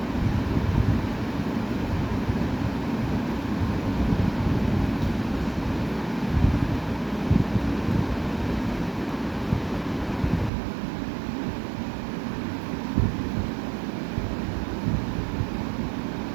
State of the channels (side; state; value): left; drops out; at 10.5 s